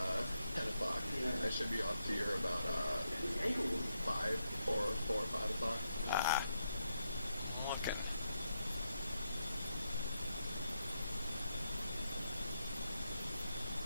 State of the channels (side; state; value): both; inverted; correlation -0.81